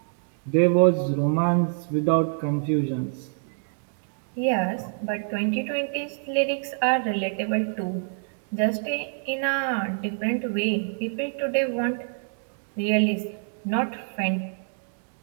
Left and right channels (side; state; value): left; silent; digital silence